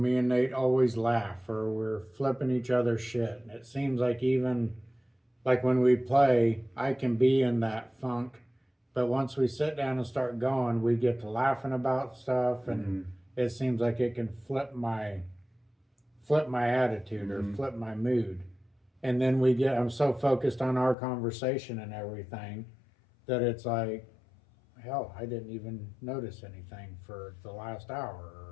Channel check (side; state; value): right; drops out; at 21.0 s